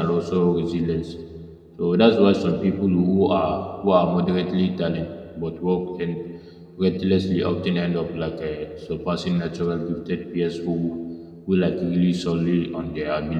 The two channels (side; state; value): both; identical; correlation 1.00